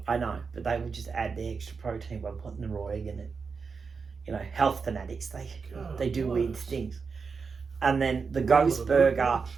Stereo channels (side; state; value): left; quieter; 5.2 dB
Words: I know, but they would just add the extra protein by putting the raw egg in it. You know, health fanatics, they do weird things. And then the ghost burger